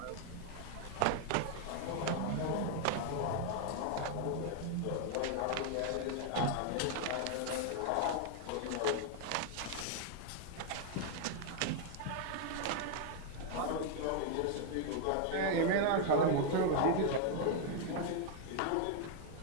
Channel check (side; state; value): both; different; correlation 0.00